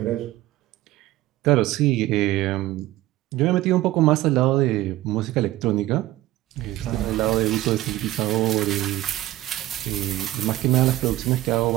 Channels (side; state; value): left; quieter; 16.0 dB